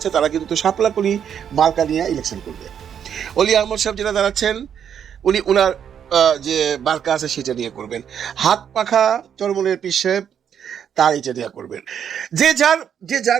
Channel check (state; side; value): quieter; left; 8.5 dB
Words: তারা কিন্তু শাপলাকলি মার্কা নিয়ে ইলেকশন করবে। অলি আহমদ সাহেব যেটা দাঁড়াচ্ছেন উনি ওনার যে মার্কা আছে সেটা নিয়ে করবেন। হাত পাখা চরমনের পীর সাহেব তার এটা নিয়ে করবেন। যে